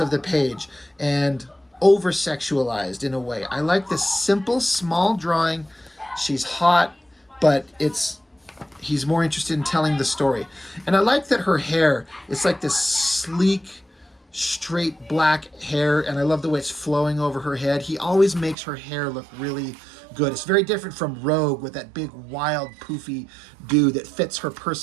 the page and over-sexualized in a way. I like this simple, small drawing. She's hot, but he's more interested in telling the story. And I like that her hair, it's like this sleek, straight black hair, and I love the way it's flowing over her head. He always makes her hair look really good. It's very different from Rogue with that big, wild, poofy dude that fits her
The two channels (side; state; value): left; drops out; at 18.6 s